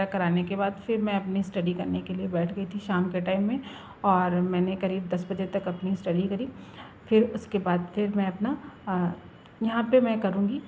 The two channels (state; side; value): identical; both; correlation 1.00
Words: कराने के बाद फिर मैं अपनी स्टडी करने के लिए बैठ गई थी शाम के टाइम में, और मैंने करीब 10 बजे तक अपनी स्टडी करी। फिर उसके बाद फिर मैं अपना यहाँ पे मैं करूँगी